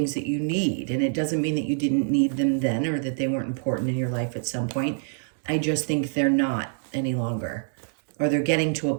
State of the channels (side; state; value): left; silent; digital silence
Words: that you need. And it doesn't mean that you didn't need them then or that they weren't important in your life at some point. I just think they're not any longer, or they're getting to a